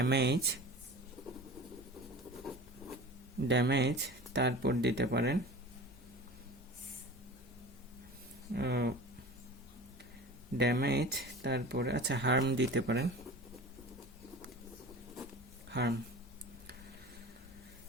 ড্যামেজ। তারপর দিতে পারেন ড্যামেজ, তারপরে আচ্ছা হার্ম দিতে পারেন, হার্ম।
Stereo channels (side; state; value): both; normal; correlation 0.36